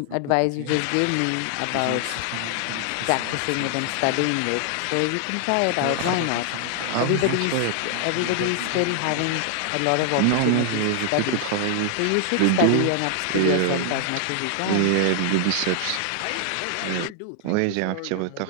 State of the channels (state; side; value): different; both; correlation 0.00